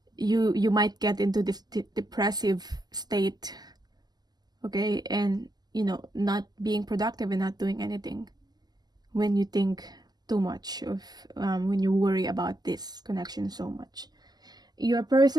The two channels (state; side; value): late; left; 0.20 ms